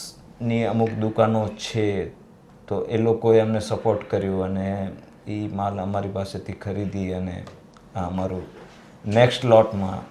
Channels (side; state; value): both; identical; correlation 1.00